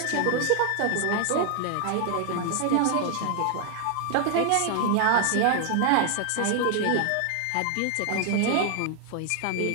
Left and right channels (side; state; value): both; different; correlation 0.00